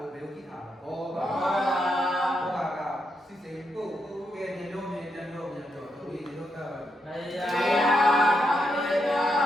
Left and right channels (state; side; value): normal; both; correlation 0.81